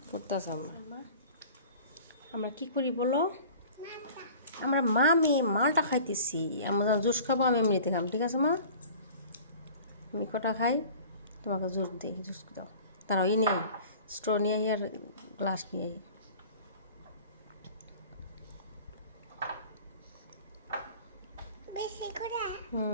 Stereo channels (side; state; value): both; inverted; correlation -0.44